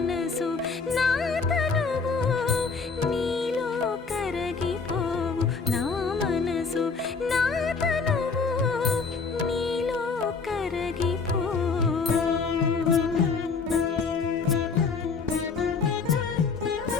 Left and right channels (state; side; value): quieter; right; 4.8 dB